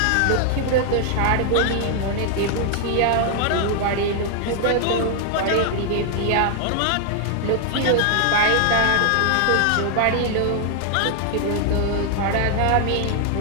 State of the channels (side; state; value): both; different; correlation 0.00